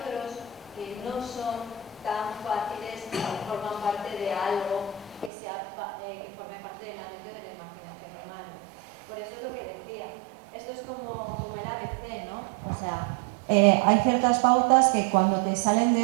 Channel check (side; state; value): left; drops out; at 5.3 s